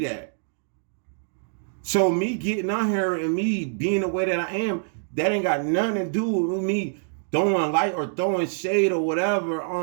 that. So me getting on here and me being the way that I am, that ain't got nothing to do with me throwing light or throwing shade or whatever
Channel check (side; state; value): left; silent; digital silence